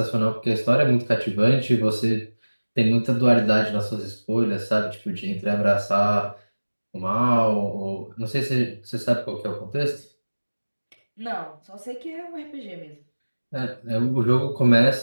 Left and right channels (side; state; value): both; inverted; correlation -1.00